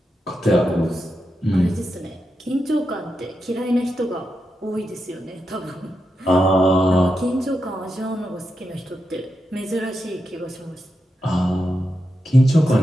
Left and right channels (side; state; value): both; normal; correlation 0.87